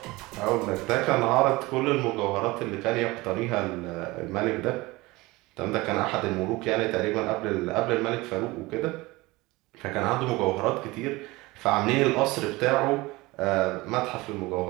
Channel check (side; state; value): left; quieter; 21.5 dB